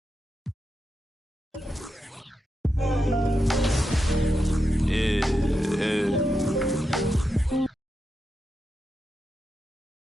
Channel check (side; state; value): both; normal; correlation 0.87